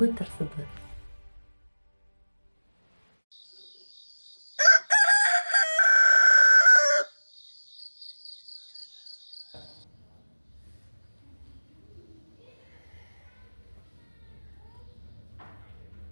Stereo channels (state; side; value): inverted; both; correlation -1.00